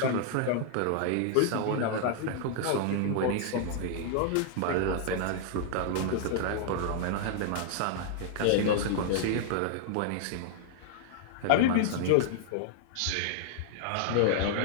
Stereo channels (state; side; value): different; both; correlation -0.01